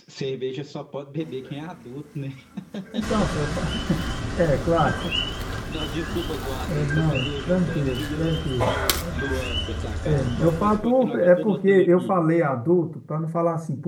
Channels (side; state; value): both; identical; correlation 1.00